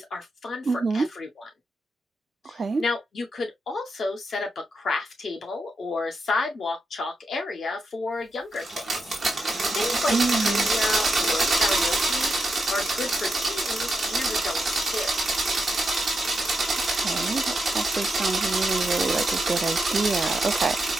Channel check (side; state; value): both; normal; correlation 0.85